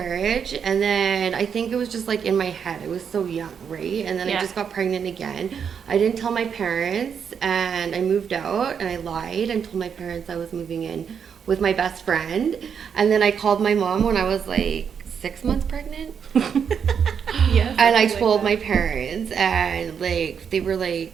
and then I think it was just like in my head. I was so young, right? And then I just got pregnant again. I didn't tell my parents, and I moved out, and I lied and told my parents I was moving in with my best friend. And then I called my mom when I was like 6 months pregnant. Yes. And I told my parents, and like they were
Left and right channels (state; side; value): quieter; left; 7.2 dB